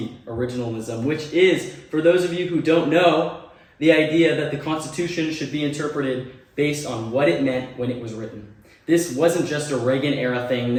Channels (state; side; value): identical; both; correlation 1.00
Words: originalism, which is, for those of you who don't know, the idea that the Constitution should be interpreted based on what it meant when it was written. This wasn't just a Reagan-era thing.